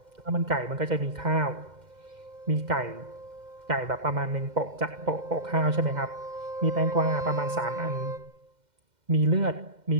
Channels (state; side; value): late; left; 2.1 ms